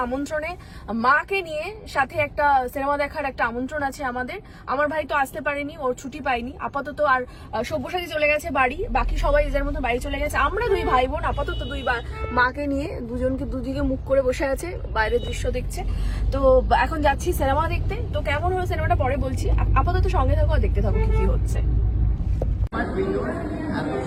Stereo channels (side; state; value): both; identical; correlation 1.00